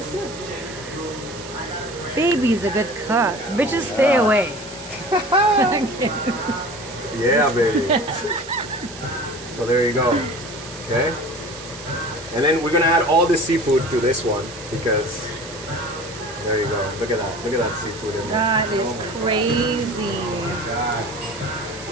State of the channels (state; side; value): noise; right; hiss, 15 dB below the sound